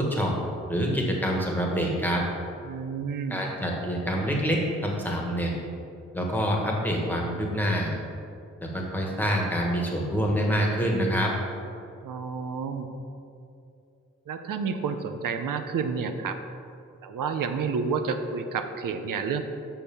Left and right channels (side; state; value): both; normal; correlation 0.54